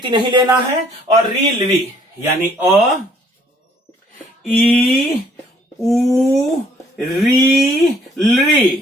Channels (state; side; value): normal; both; correlation 0.61